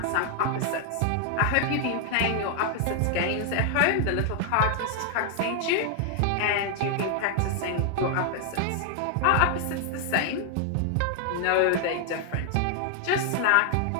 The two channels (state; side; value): different; both; correlation 0.00